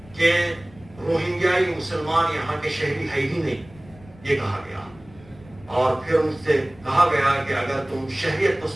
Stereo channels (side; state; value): left; noise; rumble, 23 dB below the sound